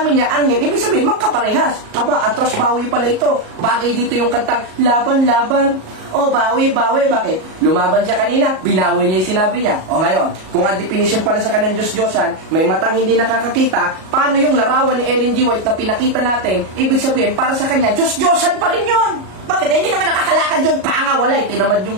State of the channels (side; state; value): left; late; 38 ms